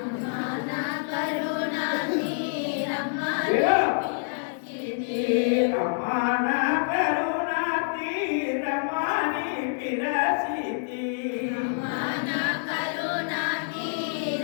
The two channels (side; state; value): right; silent; digital silence